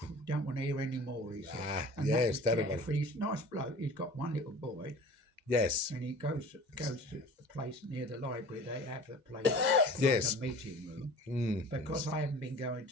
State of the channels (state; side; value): late; left; 2.0 ms